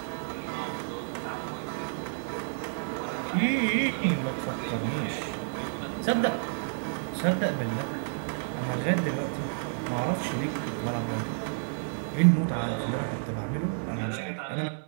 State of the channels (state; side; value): silent; left; digital silence